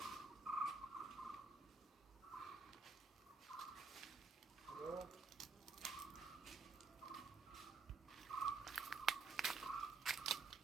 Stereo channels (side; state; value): left; quieter; 4.2 dB